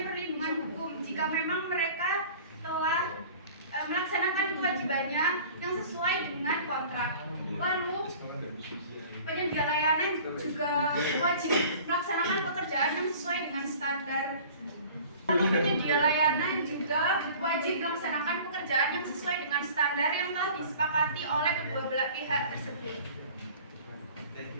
perlindungan hukum jika memang mereka telah melaksanakan kewajibannya yang sesuai dengan kontrak. Lalu, penyedia layanan juga wajib melaksanakan pekerjaan yang sesuai dengan standar. Lalu, penyedia layanan juga wajib melaksanakan pekerjaan yang sesuai dengan standar yang telah disepakati oleh kedua belah pihak tersebut.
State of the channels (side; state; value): both; inverted; correlation -0.46